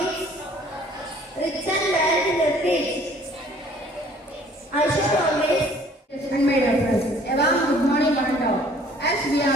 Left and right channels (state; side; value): normal; both; correlation 0.56